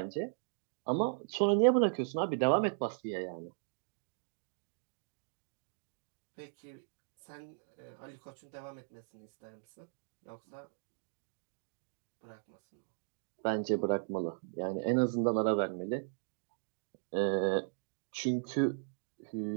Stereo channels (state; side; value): silent; left; digital silence